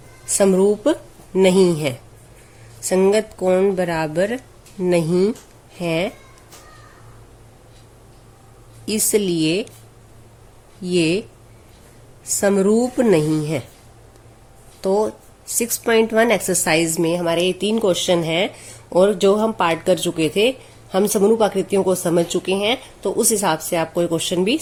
समरूप नहीं है। संगत कोण बराबर नहीं है, इसलिए ये समरूप नहीं है। तो 6.1 एक्सरसाइज में हमारे ये 3 क्वेश्चन हैं, और जो हम पार्ट कर चुके थे, हम समरूप आकृतियों को समझ चुके हैं। तो तो उस हिसाब से आपको ये क्वेश्चन भी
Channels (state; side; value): identical; both; correlation 1.00